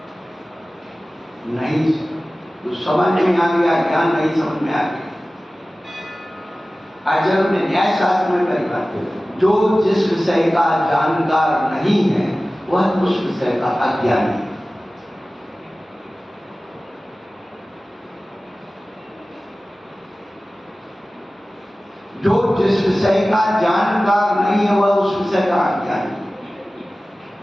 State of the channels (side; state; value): both; normal; correlation 0.97